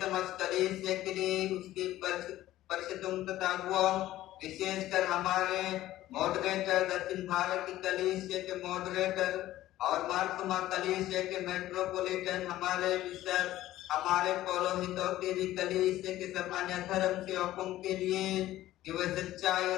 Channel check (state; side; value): quieter; right; 14.8 dB